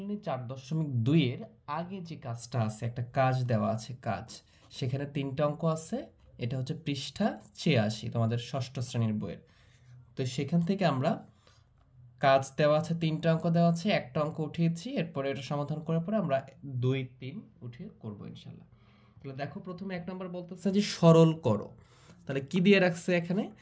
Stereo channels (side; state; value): both; identical; correlation 1.00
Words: 4.2 এর আগে যে কাজটা আছে, একটা কাজ দেওয়া আছে, সেখানে 3টা অঙ্ক আছে। এটা হচ্ছে পৃষ্ঠা 86 তোমাদের ষষ্ঠ শ্রেণীর বইয়ের। তো সেখান থেকে আমরা কাজ দেওয়া আছে, 3টা অঙ্ক দেওয়া আছে, একটা অঙ্ক উঠিয়েছি। এরপরে এটা সমাধান করার পরে আমরা 2, 3 উঠিয়ে করবো ইনশাল্লাহ। তাহলে দেখো, প্রথমে 1 নম্বর বলতেছে যে সরল করো। তাহলে কি দিয়ে রাখছে এখানে?